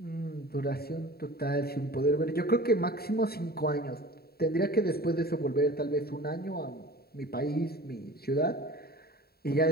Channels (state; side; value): late; right; 0.45 ms